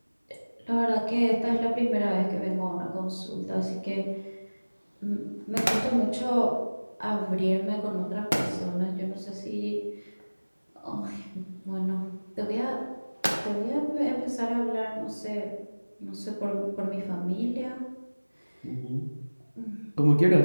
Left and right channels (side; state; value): both; inverted; correlation -1.00